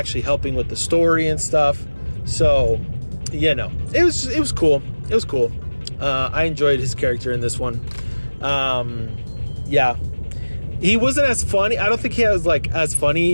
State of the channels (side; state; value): both; inverted; correlation -1.00